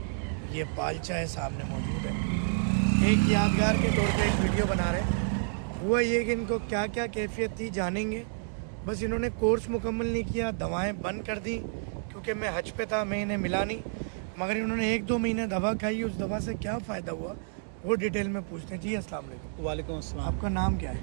ये पालचा है सामने मौजूद है। एक यादगार के तौर पे एक वीडियो बना रहे हैं। हुआ ये कि इनको क्या क्या कैफियत थी जानेंगे। बस इन्होंने कोर्स मुकम्मल नहीं किया, दवाएँ बंद कर दी क्योंकि मैं हज पे था, मैं इन्हें मिला नहीं। मगर इन्होंने 1-2 महीने दवा खाई, उस दवा से क्या फ़ायदा हुआ वो डिटेल में पूछते हैं। जी अस्सलाम वालेकुम। वालेकुम अस्सलाम। आपका नाम क्या है?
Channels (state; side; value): silent; left; 58 dB below the other